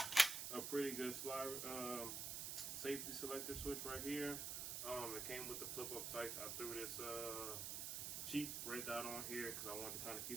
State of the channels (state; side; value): noise; right; hiss, 2 dB below the sound